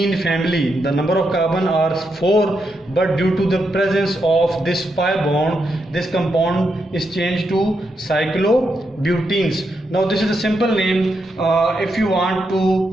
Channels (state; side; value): normal; both; correlation 0.82